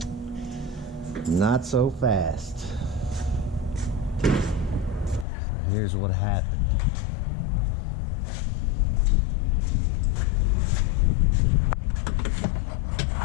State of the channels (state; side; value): drops out; right; at 5.2 s